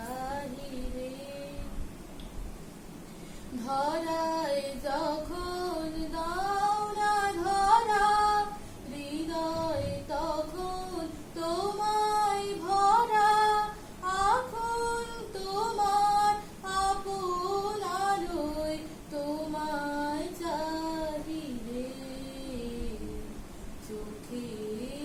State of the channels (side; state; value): both; identical; correlation 1.00